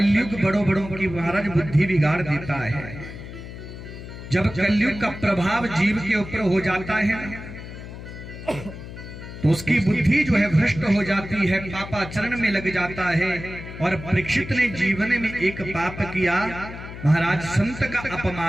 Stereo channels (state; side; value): noise; left; hum, 12 dB below the sound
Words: बड़ों बड़ों की महाराज बुद्धि बिगाड़ देता है। जब कलयुग का प्रभाव जीव के ऊपर हो जाता है तो उसकी बुद्धि जो है भ्रष्ट हो जाती है, पापाचरण में लग जाता है। और परीक्षित ने जीवन में एक पाप किया, महाराज संत का